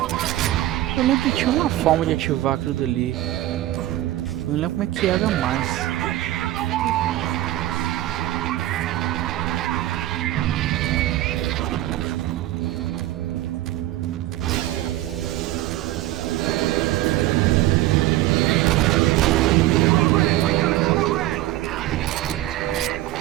Eu lembro que tinha uma forma de ativar aquilo dali. Eu não lembro como é que era mais.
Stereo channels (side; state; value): left; quieter; 15.3 dB